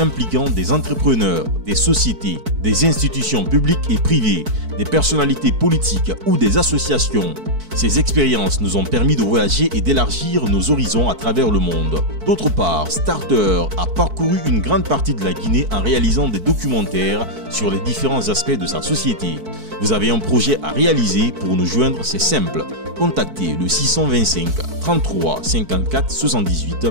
des entrepreneurs, des sociétés, des institutions publiques et privées, des personnalités politiques ou des associations. Ces expériences nous ont permis de voyager et d'élargir nos horizons à travers le monde. D'autre part, Starter a parcouru une grande partie de la Guinée en réalisant des documentaires sur les différents aspects de sa société. Vous avez un projet à réaliser, pour nous joindre, c'est simple. Contactez le 625 33 54 78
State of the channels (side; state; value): left; late; 4.6 ms